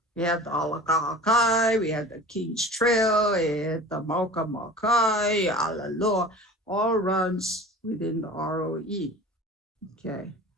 We have the Alakahakai, we have the King's Trail, and the Mauka Makai, Alaloa, all runs within the ROE. Okay.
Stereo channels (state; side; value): normal; both; correlation 0.39